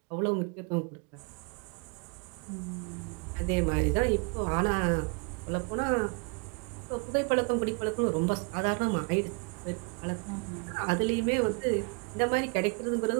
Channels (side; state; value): left; quieter; 34.0 dB